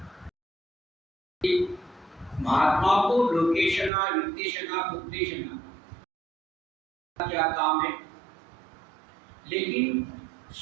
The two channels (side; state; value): left; drops out; at 3.9 s